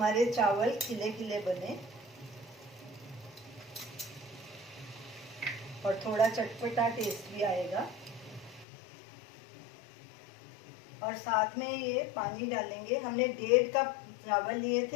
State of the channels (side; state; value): right; drops out; at 8.7 s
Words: चावल खिले खिले बने और थोड़ा चटपटा टेस्ट भी आएगा। और साथ में ये पानी डालेंगे। हमने 1.5 कप चावल लिए